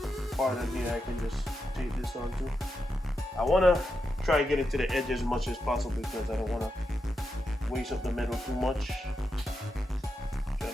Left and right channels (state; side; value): normal; both; correlation 0.86